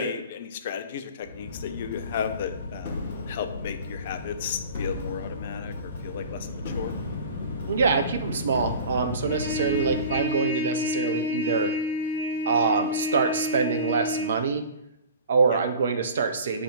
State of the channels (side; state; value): both; inverted; correlation -0.41